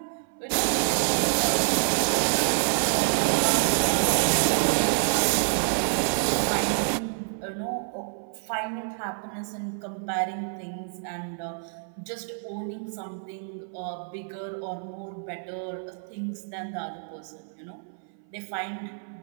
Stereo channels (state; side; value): silent; left; 57 dB below the other